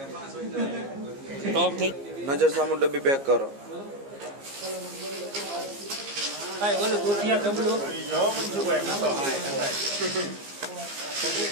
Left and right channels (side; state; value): left; late; 15 ms